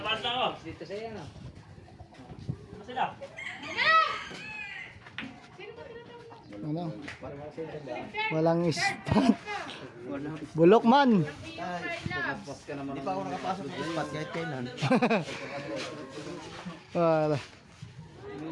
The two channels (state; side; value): identical; both; correlation 1.00